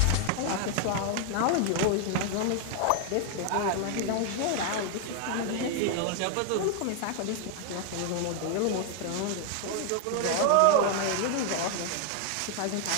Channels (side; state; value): both; different; correlation 0.00